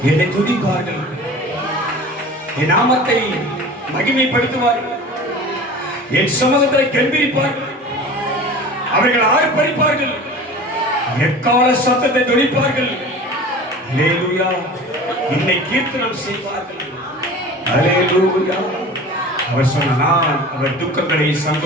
என்னை துதிப்பார்கள், என் நாமத்தை மகிமைப்படுத்துவார்கள், என் சமூகத்தை கெம்பீரிப்பார்கள், அவர்கள் ஆர்ப்பரிப்பார்கள், எக்கால சத்தத்தை துணிப்பார்கள். ஹல்லேலூயா, என்னை கீர்த்தனம் செய்வார்கள். ஹல்லேலூயா. அவர் சொன்ன, நான் அவர் துக்கங்களை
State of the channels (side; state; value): both; normal; correlation 0.39